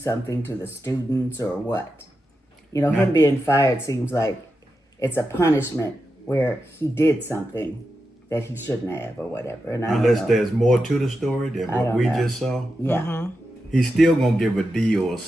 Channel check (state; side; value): normal; both; correlation 0.89